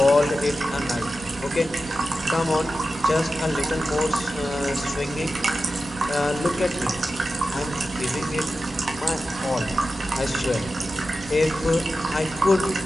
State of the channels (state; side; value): normal; both; correlation 0.92